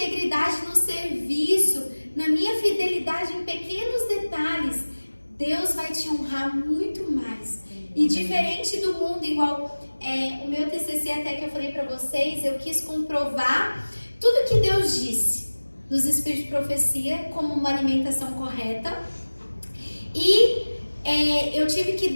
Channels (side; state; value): both; inverted; correlation -1.00